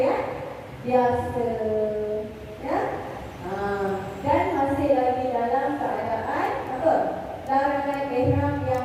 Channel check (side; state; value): both; identical; correlation 1.00